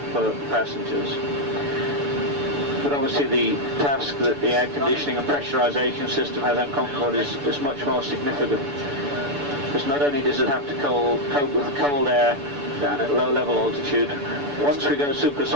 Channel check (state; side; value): late; left; 6.9 ms